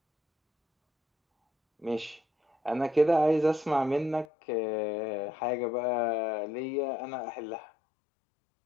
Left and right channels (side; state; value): right; drops out; at 4.2 s